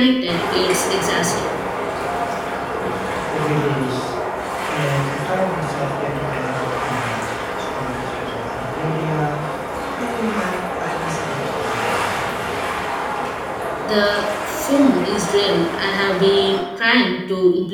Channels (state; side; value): identical; both; correlation 1.00